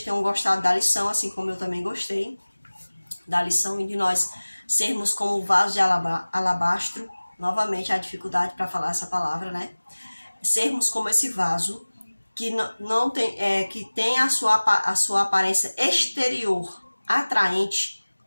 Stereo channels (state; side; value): inverted; both; correlation -1.00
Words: tenham gostado da lição, assim como eu também gostei da lição e de nós sermos como o vaso de alabastro. Novamente, a dificuldade para falar essa palavra, né? Sermos como esse vaso que não tem, que tem a sua aparência exterior atraente,